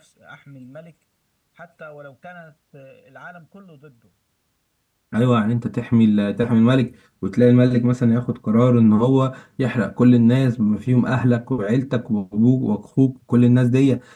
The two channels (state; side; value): identical; both; correlation 1.00